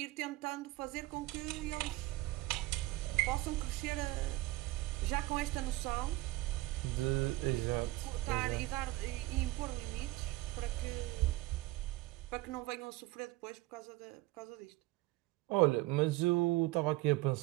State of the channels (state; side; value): quieter; left; 18.8 dB